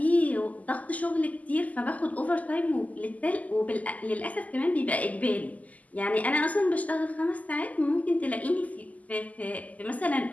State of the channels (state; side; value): late; right; 0.075 ms